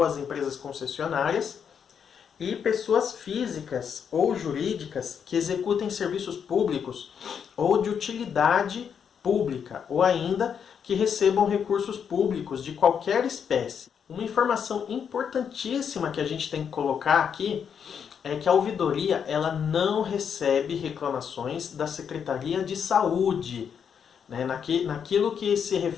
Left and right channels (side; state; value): right; quieter; 7.4 dB